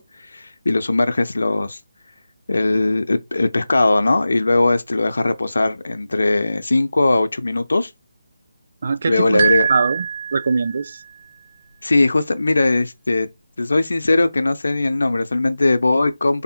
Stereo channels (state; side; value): inverted; both; correlation -0.94